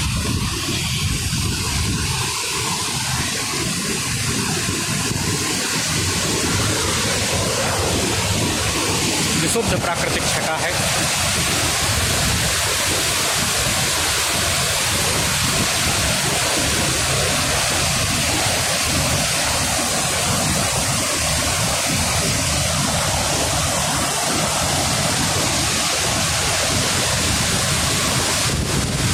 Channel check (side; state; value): both; identical; correlation 1.00